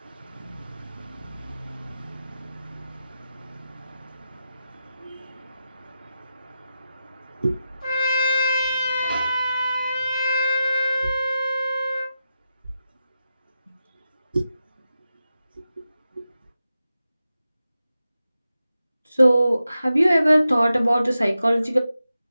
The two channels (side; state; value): both; inverted; correlation -0.90